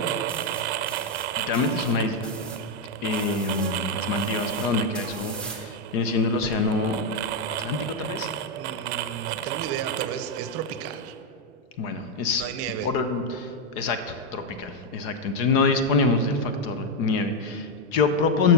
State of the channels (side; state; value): both; normal; correlation 0.03